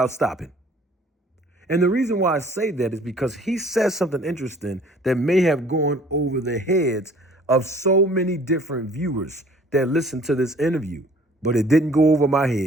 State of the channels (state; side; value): normal; both; correlation 0.53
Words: stopping. And the reason why I say that is because he says something interesting that may have gone over the heads of so many different viewers that listened to this interview, but it didn't go over my